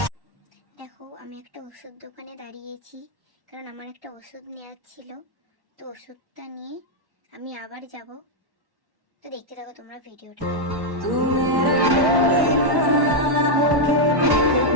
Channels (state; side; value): late; left; 1.1 ms